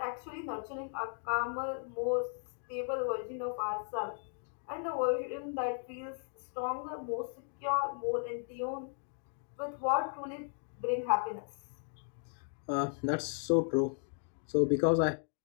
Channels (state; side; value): silent; right; 54 dB below the other